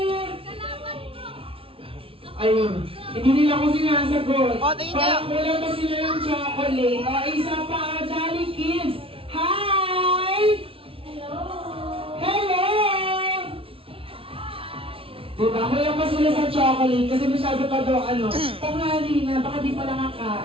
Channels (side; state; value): left; late; 0.26 ms